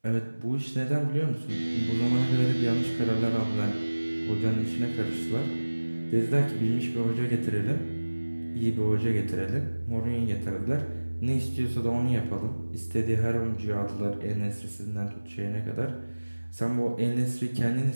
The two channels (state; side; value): inverted; both; correlation -1.00